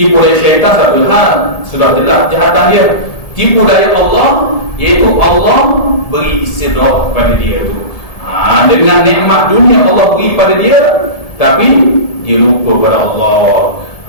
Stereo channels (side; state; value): right; late; 1.7 ms